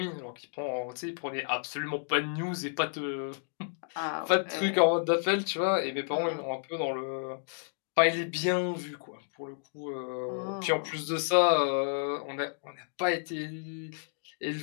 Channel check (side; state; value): right; silent; digital silence